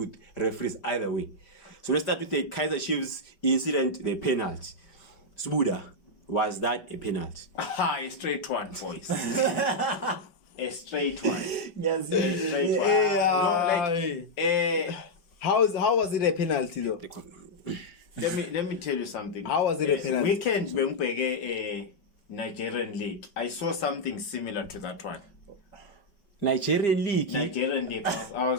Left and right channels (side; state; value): right; late; 5.2 ms